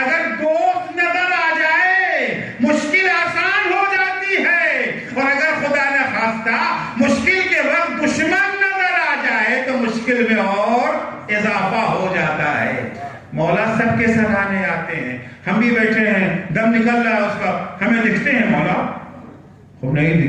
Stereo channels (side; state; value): both; identical; correlation 1.00